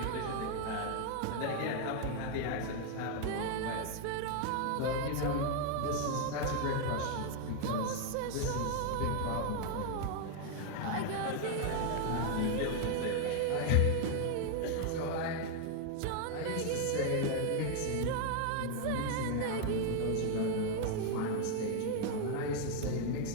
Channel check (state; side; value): different; both; correlation 0.01